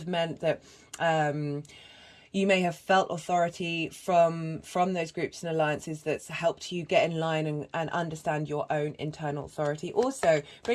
meant that you may have felt authority from those groups and alliances that's helped you get in line and understand your own internal authority. Also,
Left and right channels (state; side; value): identical; both; correlation 1.00